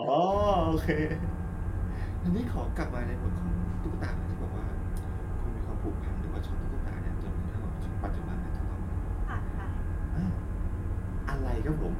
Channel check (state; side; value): identical; both; correlation 1.00